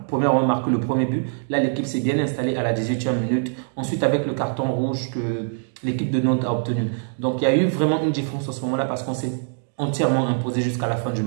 premièrement marqué le premier but. Là, l'équipe s'est bien installée à la 18e minute. Ensuite, avec le carton rouge que l'équipe de Nantes a obtenu. Donc, il y a eu vraiment une différence à ce moment-là parce qu'on s'est entièrement imposé jusqu'à la fin du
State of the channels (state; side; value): silent; left; digital silence